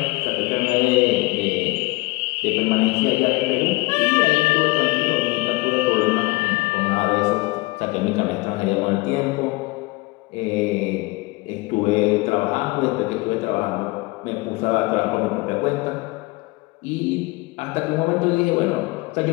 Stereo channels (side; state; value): right; quieter; 23.5 dB